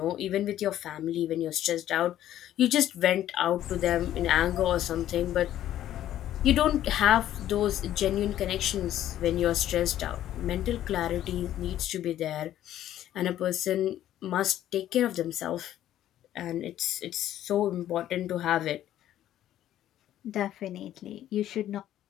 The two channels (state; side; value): quieter; right; 12.3 dB